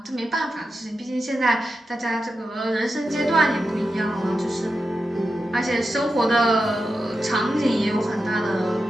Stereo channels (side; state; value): both; normal; correlation 0.89